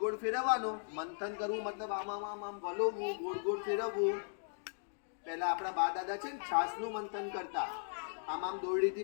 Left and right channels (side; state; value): right; silent; digital silence